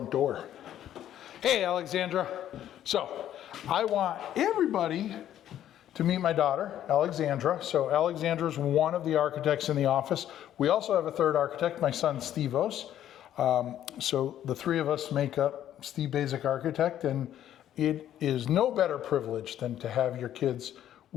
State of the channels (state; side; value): quieter; right; 11.4 dB